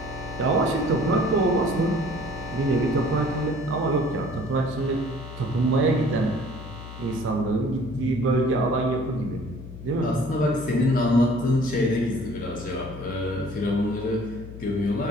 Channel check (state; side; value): noise; left; hum, 12 dB below the sound